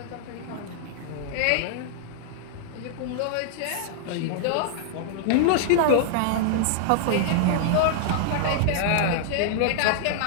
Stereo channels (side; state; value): both; different; correlation -0.01